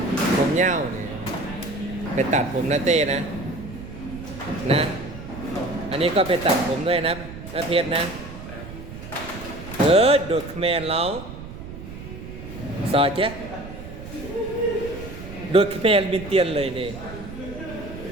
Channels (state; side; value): noise; right; rumble, 12 dB below the sound